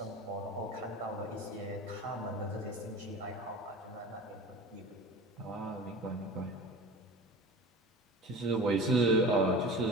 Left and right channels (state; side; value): normal; both; correlation 0.36